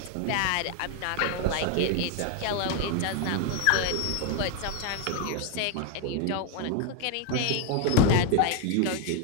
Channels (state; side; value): different; both; correlation 0.01